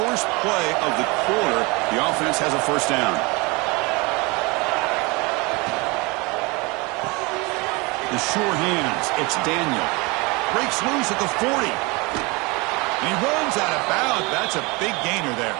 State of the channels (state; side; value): quieter; left; 26.6 dB